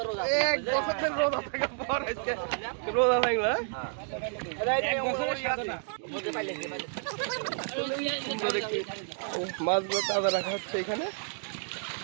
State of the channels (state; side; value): silent; left; 58 dB below the other